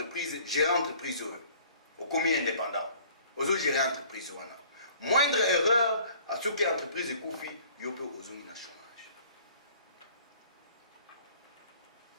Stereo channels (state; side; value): inverted; both; correlation -0.53